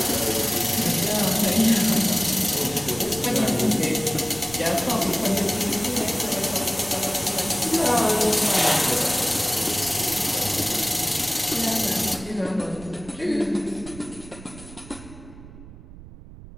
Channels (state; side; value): noise; right; rumble, 17 dB below the sound